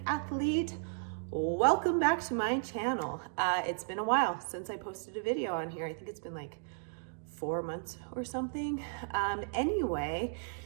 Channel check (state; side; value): silent; left; digital silence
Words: Athlete. Welcome back to my channel. It's been a while since I posted a video on here. I think it's been like 4 months or something. Anyway,